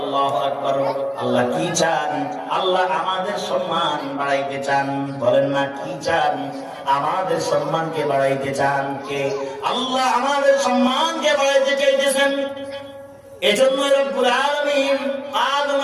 আকবার। আল্লাহ কি চান? আল্লাহ আমাদের সম্মান বাড়াইতে চান। বলেন না, কি চান? আমাদের সম্মানকে বাড়াইতে চান। কে? আল্লাহ আমাদের সম্মানকে বাড়াইতে চাইতেছেন। এজন্য রব্বুল আলামিন আদম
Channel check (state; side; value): identical; both; correlation 1.00